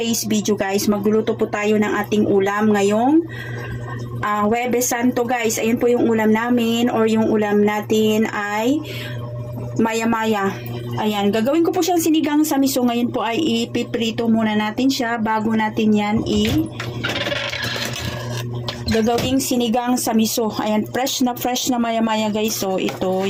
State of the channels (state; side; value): identical; both; correlation 1.00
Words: video guys, magluluto po tayo ng ating ulam ngayong Huwebes Santo guys. Ayun po yung ulam namin or yung ulam natin ay maya-maya. Ayan, gagawin ko po siyang sinigang sa miso. Ngayon po ay ipiprito muna natin siya bago natin yan gagawing sinigang sa miso. Ayan, fresh na maya-maya guys. So, ito